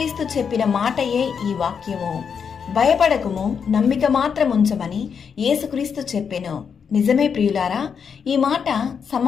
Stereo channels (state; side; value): quieter; right; 6.7 dB